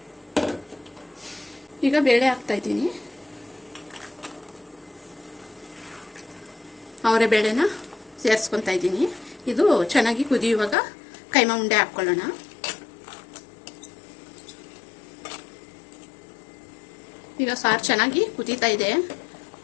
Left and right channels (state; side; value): drops out; right; at 10.8 s